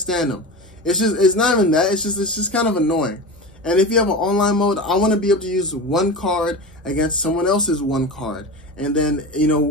them. It's not even that. It's just kind of annoying. And if you have an online mode, I want to be able to use one card against someone else's one card. And then, you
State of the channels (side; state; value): both; normal; correlation 0.27